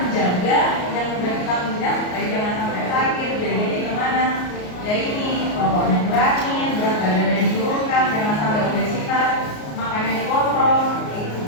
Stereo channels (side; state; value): right; late; 33 ms